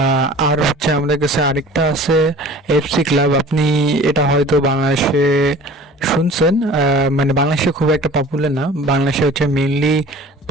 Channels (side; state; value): both; normal; correlation 0.44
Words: আর হচ্ছে আমাদের কাছে আরেকটা আছে এফসি ক্লাব। আপনি এটা হয়তো বাংলাদেশে শুনছেন, মানে বাংলাদেশে খুব একটা পপুলার না। বাংলাদেশে হচ্ছে মেইনলি